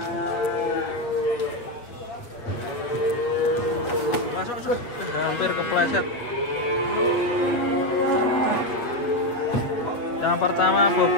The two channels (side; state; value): right; late; 8.1 ms